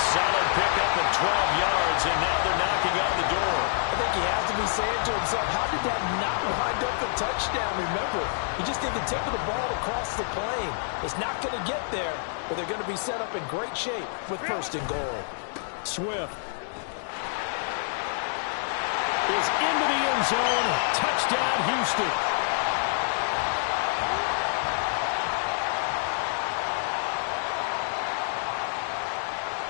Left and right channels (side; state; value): right; silent; digital silence